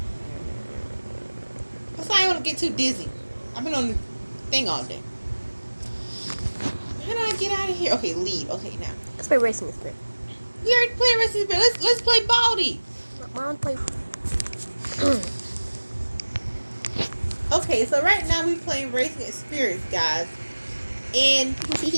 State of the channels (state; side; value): inverted; both; correlation -1.00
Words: That's why I don't want to get too dizzy. I've been on the thing all day. How do I get out of here? Okay, lead. Okay, now. Let's play Racing Spirit. We already played Racing Spirit. Let's play Baldy. I want to play. Okay, so right now we playing Racing Spirits, guys. And